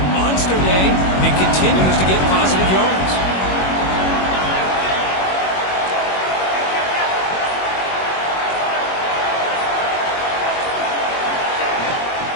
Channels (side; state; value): right; late; 21 ms